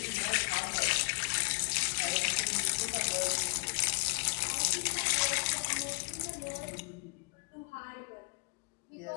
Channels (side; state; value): right; quieter; 38.9 dB